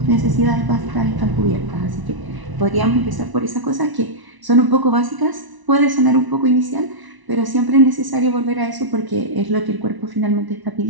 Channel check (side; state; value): left; late; 1.0 ms